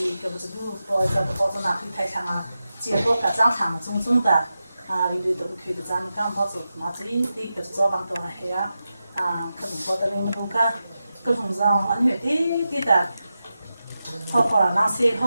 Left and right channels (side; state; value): both; inverted; correlation -0.91